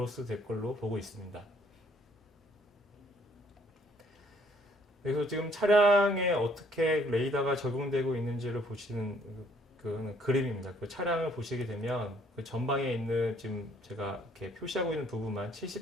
될 걸로 보고 있습니다. 그래서 지금 차량에 어떻게 레이더가 적용되고 있는지를 보시는 그 그림입니다. 그 차량을 보시게 되면 그 전방에 있는 지금 제가 이렇게 표시하고 있는 부분만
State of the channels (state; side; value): normal; both; correlation 0.63